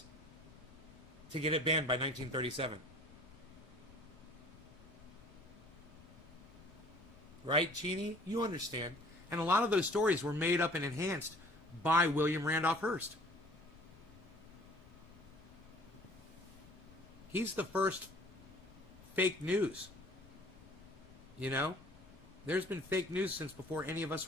to get it banned by 1937? Right, Chini? You understand. And a lot of those stories were made up and enhanced by William Randolph Hearst. He's the first fake news. You know? There's been fake news since before any of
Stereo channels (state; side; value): noise; left; rumble, 22 dB below the sound